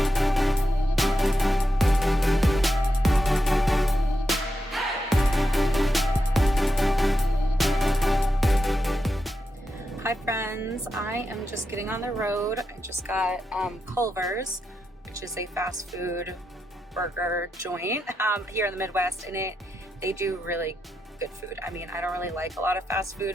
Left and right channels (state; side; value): normal; both; correlation 0.86